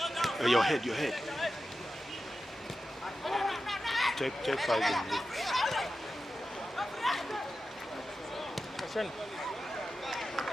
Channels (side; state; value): both; normal; correlation 0.92